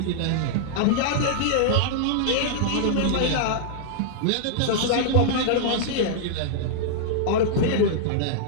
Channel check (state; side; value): different; both; correlation -0.02